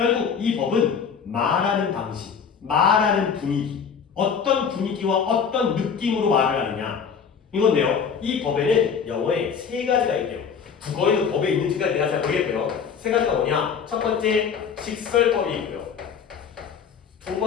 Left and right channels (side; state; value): right; quieter; 6.7 dB